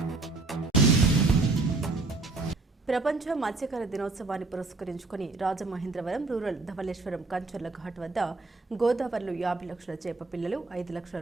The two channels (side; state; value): left; quieter; 3.5 dB